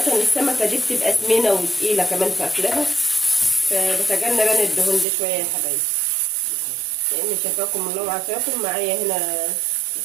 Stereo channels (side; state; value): left; drops out; at 5.1 s